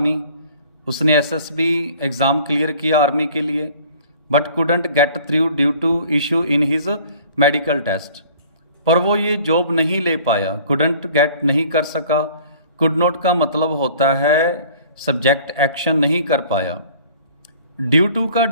उसने एसएसबी एग्ज़ाम क्लियर किया आर्मी के लिए। But couldn't get through due to issue in his medical test, पर वो ये जॉब नहीं ले पाया। कुडंट गेट नहीं कर सका। कुड नॉट का मतलब होता है सब्जेक्ट एक्शन नहीं कर पाया। ड्यू टू का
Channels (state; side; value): inverted; both; correlation -0.50